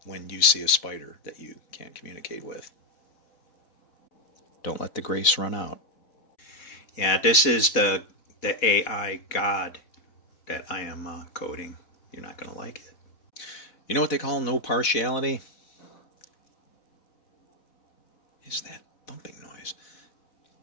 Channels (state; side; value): late; right; 4.1 ms